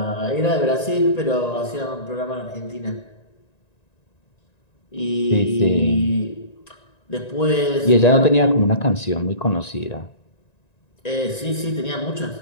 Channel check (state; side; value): late; right; 1.9 ms